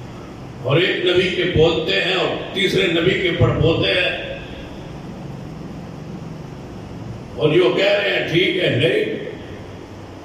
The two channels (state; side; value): identical; both; correlation 1.00